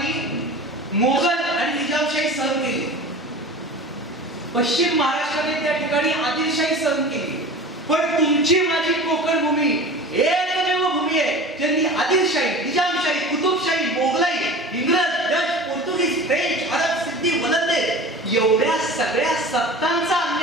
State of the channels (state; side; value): normal; both; correlation 0.36